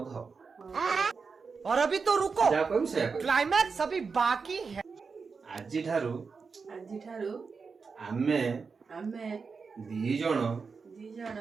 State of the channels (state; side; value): quieter; left; 5.1 dB